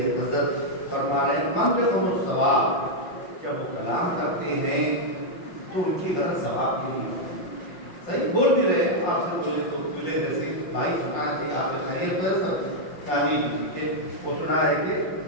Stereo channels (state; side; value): late; right; 5.6 ms